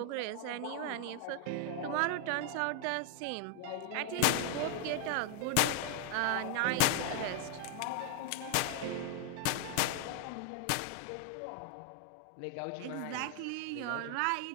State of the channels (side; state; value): both; different; correlation 0.00